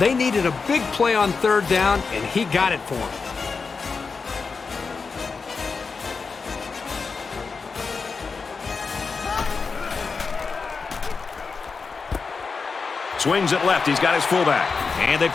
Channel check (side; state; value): right; quieter; 4.8 dB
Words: needed a big play on third down, and he got it for them. Swings it left. He's got his fullback. And they